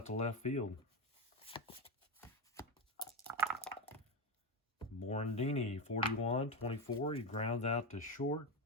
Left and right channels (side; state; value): both; normal; correlation 0.13